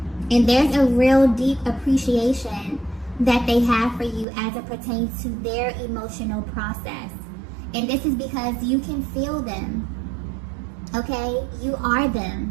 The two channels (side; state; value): left; drops out; at 4.2 s